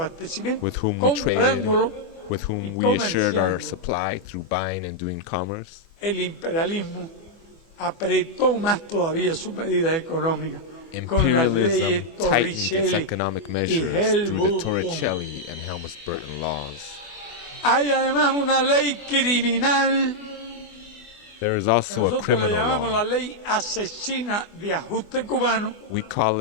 with whom we traded, comprándolo with y whom we assured our comerciando, supply through buying and doing commerce, el imperialismo apretó más todavía sus medidas económicas con las imperialism leyes tightened its Torricelli economic y measures through the Helmut-Kohl. Torricelli and Helmut-Burton laws. Hay además una ley criminal There is que also a nosotros le criminal llamamos la law. ley asesina de ajuste cubano, We call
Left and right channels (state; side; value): late; right; 24 ms